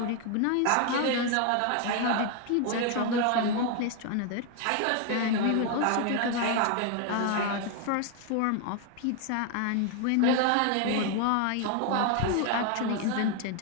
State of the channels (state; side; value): different; both; correlation 0.01